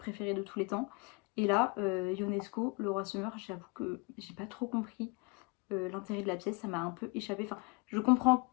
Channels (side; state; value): right; quieter; 30.0 dB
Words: de tous les temps. Et là, Ionesco, Le Roi se meurt, j'avoue que j'ai pas trop compris l'intérêt de la pièce, ça m'a un peu échappé. Enfin, je comprends,